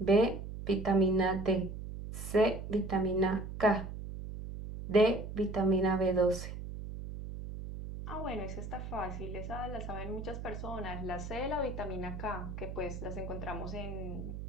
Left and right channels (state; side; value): noise; right; hum, 8 dB below the sound